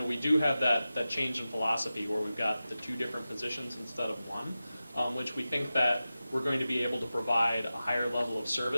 we do have that change in philosophy where we've got the two different positions instead of one, which we think that we're going to be able to provide a higher level of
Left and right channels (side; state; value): both; inverted; correlation -0.94